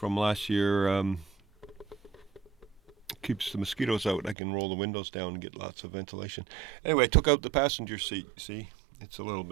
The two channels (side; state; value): left; drops out; at 4.4 s